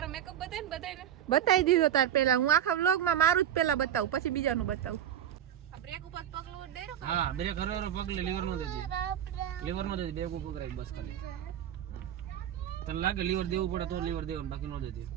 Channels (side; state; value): left; quieter; 10.4 dB